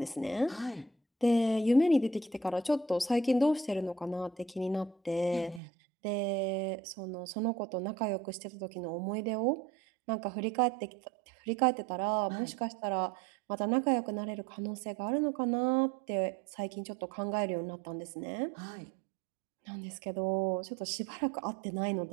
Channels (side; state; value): left; drops out; at 5.6 s